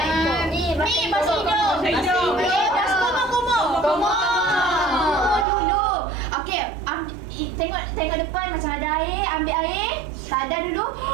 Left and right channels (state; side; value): drops out; left; at 5.5 s